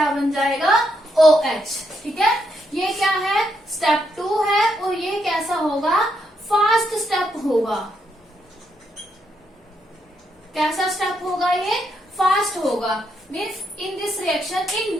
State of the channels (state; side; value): normal; both; correlation 0.78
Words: बन जाएगा, OH, ठीक है। ये क्या है, स्टेप 2 है, और ये कैसा होगा, फास्ट स्टेप होगा। कैसा स्टेप होगा, ये फास्ट होगा। Means in this reaction, in